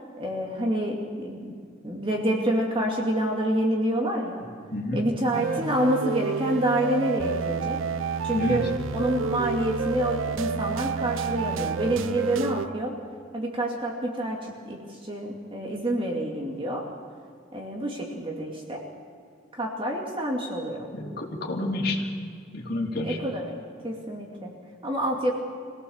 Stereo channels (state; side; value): normal; both; correlation 0.46